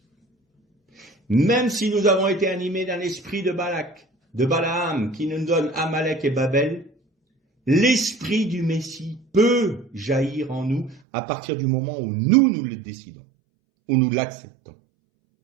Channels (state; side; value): drops out; left; at 11.0 s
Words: Même si nous avons été animés d'un esprit de Balak, de Balaam, qui nous donne Amalek et Babel, l'esprit du Messie peut jaillir en nous à partir du moment où nous le décidons, où nous l'acceptons.